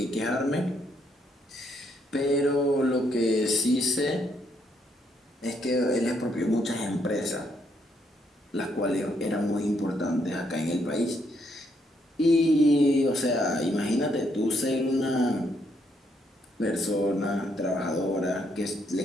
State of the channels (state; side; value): normal; both; correlation 0.74